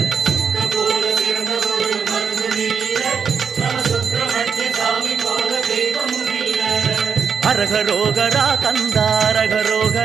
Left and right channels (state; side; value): quieter; left; 6.6 dB